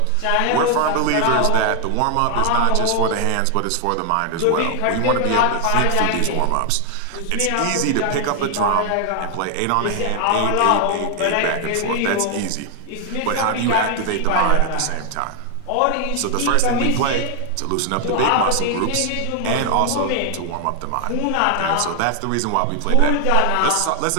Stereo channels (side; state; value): both; different; correlation 0.00